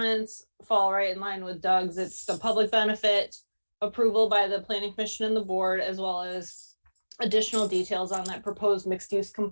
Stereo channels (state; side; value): inverted; both; correlation -1.00